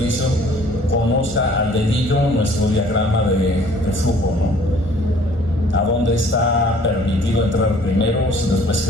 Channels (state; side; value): normal; both; correlation 0.55